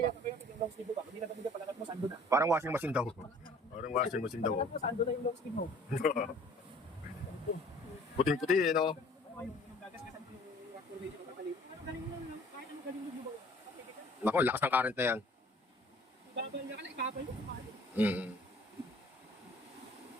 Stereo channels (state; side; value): normal; both; correlation 0.52